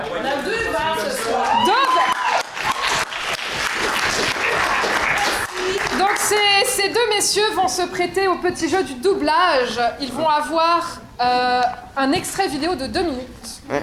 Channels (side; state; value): both; identical; correlation 1.00